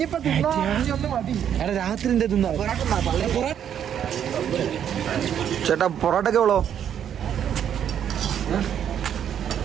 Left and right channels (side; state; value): left; quieter; 9.2 dB